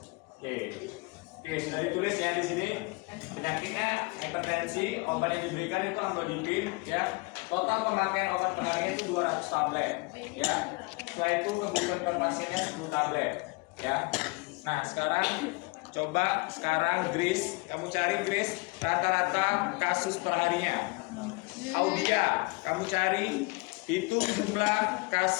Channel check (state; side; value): quieter; right; 27.9 dB